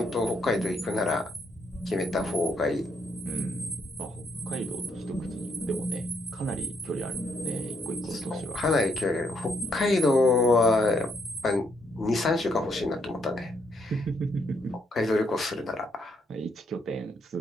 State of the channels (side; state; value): both; normal; correlation 0.74